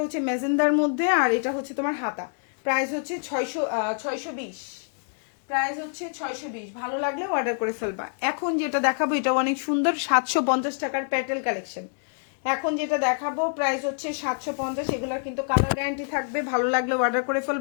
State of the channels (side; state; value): right; silent; digital silence